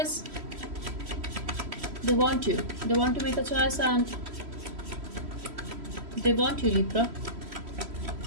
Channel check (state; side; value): late; left; 3.1 ms